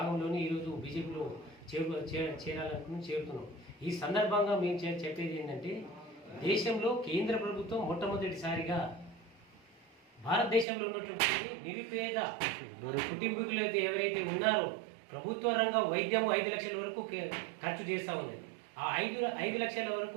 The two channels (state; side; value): drops out; left; at 10.7 s